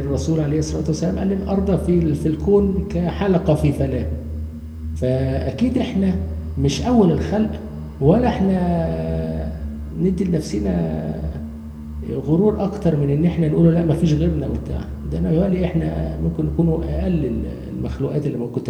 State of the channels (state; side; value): identical; both; correlation 1.00